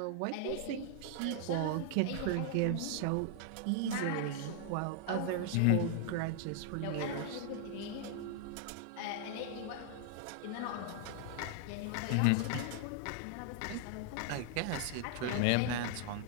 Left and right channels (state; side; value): different; both; correlation 0.00